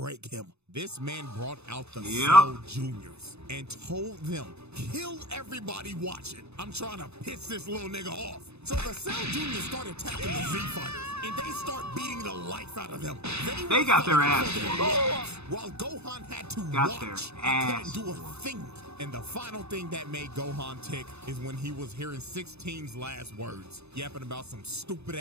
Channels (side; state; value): left; late; 0.80 ms